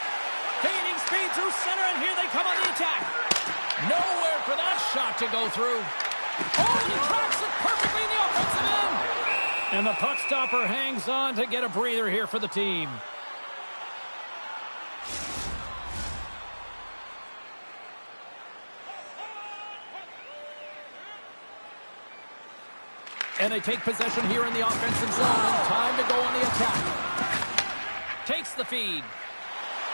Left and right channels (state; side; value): inverted; both; correlation -1.00